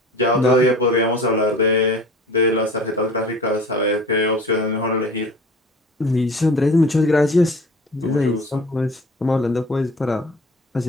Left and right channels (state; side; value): normal; both; correlation 0.43